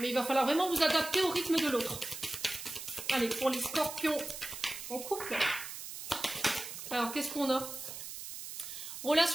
il va falloir vraiment vous adapter au rythme de l'autre. Allez, pour les scorpions en couple. Alors qu'est-ce qu'on a?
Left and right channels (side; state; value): right; noise; hiss, 9 dB below the sound